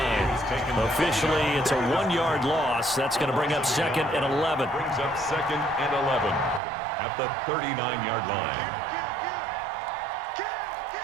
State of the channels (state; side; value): drops out; left; at 6.6 s